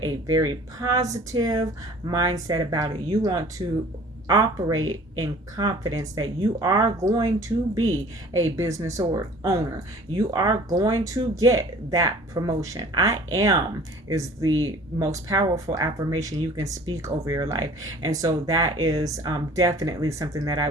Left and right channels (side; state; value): both; normal; correlation 0.49